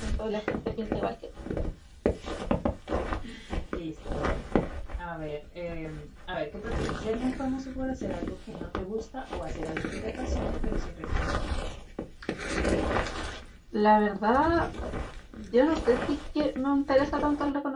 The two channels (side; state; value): both; identical; correlation 1.00